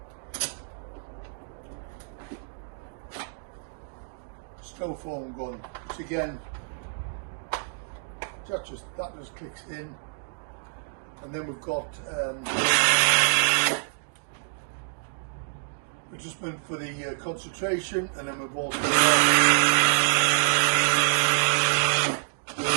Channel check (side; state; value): left; silent; digital silence